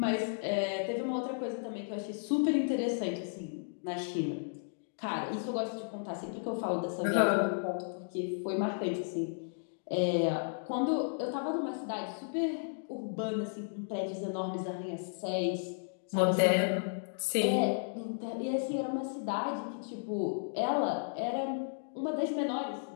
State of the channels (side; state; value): right; silent; digital silence